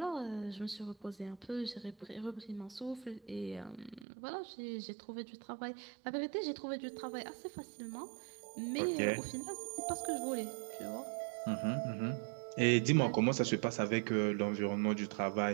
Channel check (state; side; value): drops out; left; at 4.0 s